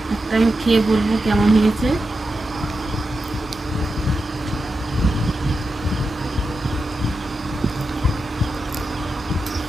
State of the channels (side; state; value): both; normal; correlation 0.89